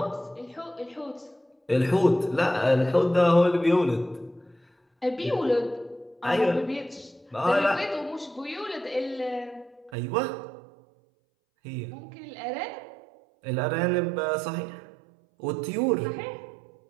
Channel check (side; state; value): left; drops out; at 10.0 s